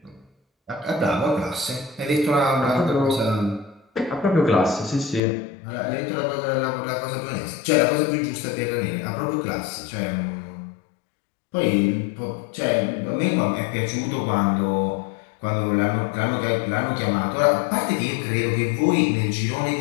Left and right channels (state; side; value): drops out; right; at 5.2 s